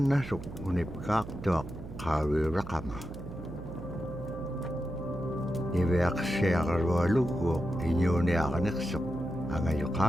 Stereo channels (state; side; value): noise; right; hum, 11 dB below the sound